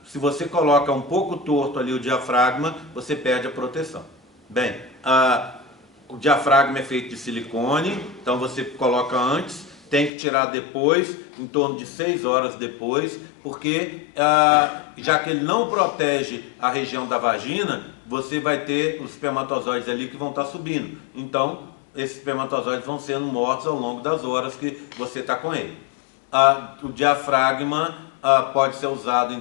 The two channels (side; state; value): right; drops out; at 10.1 s